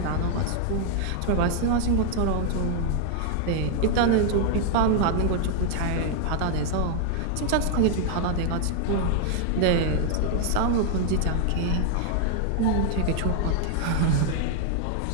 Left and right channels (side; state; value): both; different; correlation 0.00